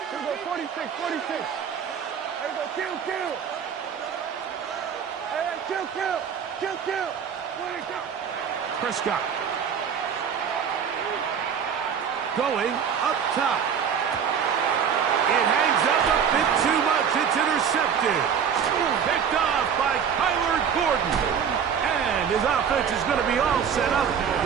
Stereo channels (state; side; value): quieter; left; 7.5 dB